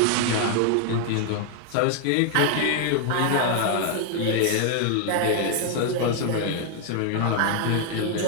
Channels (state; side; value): different; both; correlation 0.00